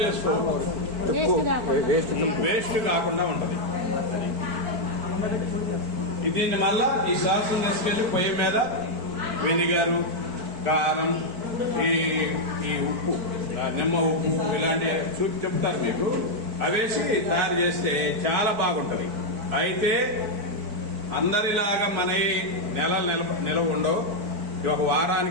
చేసుకోవచ్చు, వేస్ట్ కాకుండా ఉంటది. దీన్ని మళ్ళా ఈ సాస్ తీసుకెళ్ళి పొయ్యి మీద వెనిగరు, కారం, ఈ ఉప్పు, నిమ్మ ఉప్పు ఇలాంటి చెప్తారు మీకు, అవేసి తయారు చేస్తే చాలా బాగుంటది. అయితే అందరిలాగా మన నిలవ ఉండవు, ఒక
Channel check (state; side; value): late; left; 4.5 ms